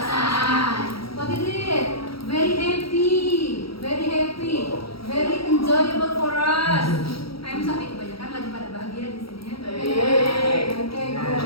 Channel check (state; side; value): late; right; 0.75 ms